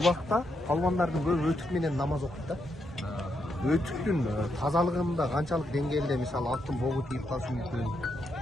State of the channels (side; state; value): both; normal; correlation 0.81